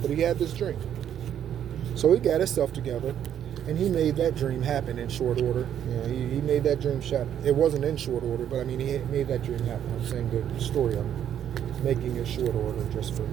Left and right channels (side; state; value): left; quieter; 9.8 dB